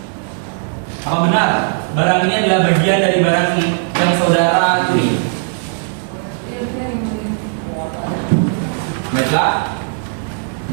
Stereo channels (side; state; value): left; silent; digital silence